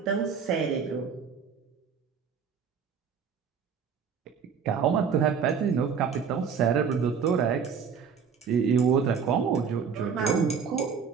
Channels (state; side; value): quieter; left; 6.5 dB